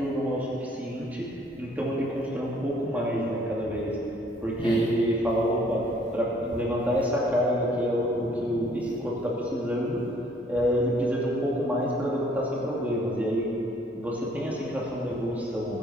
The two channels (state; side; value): normal; both; correlation 0.61